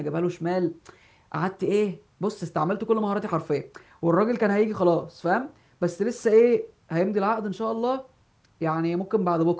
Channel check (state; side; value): identical; both; correlation 1.00